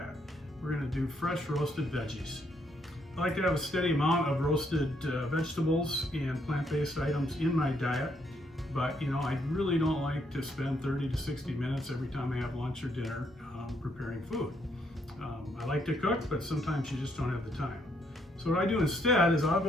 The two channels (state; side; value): normal; both; correlation 0.73